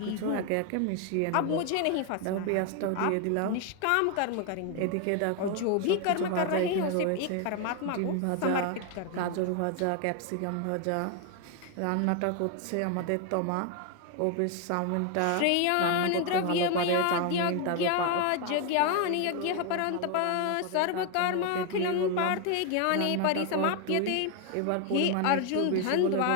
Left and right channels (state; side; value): different; both; correlation 0.01